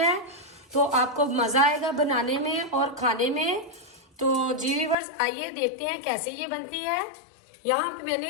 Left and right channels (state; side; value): drops out; right; at 5.0 s